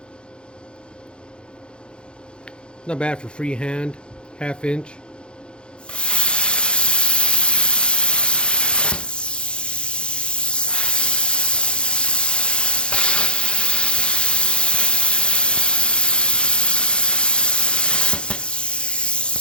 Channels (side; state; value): right; late; 0.054 ms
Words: Not bad for freehand, 1/2 inch.